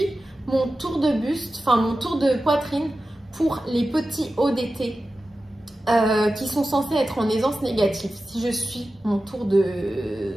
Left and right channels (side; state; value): both; normal; correlation 0.94